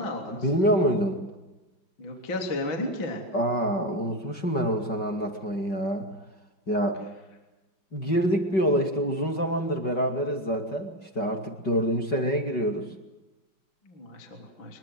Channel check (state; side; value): late; right; 5.3 ms